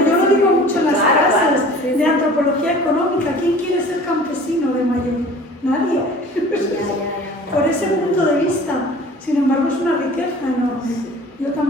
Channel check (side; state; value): both; normal; correlation 0.45